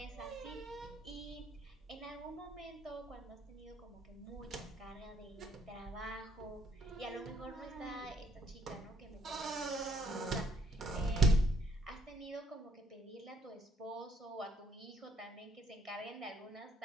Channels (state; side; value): normal; both; correlation 0.65